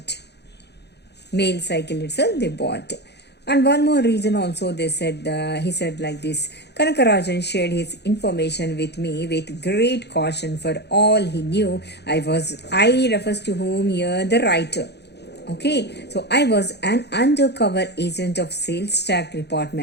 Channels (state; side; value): late; right; 0.49 ms